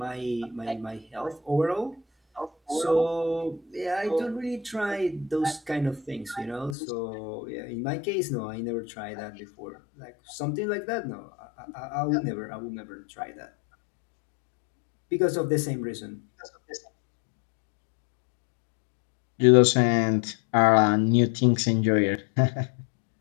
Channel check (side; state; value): right; drops out; at 6.8 s